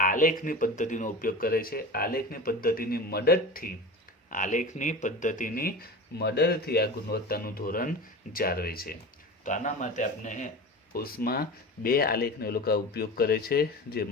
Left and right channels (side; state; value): both; normal; correlation 0.31